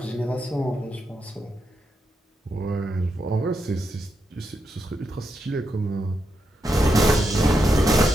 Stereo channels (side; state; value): both; normal; correlation 0.84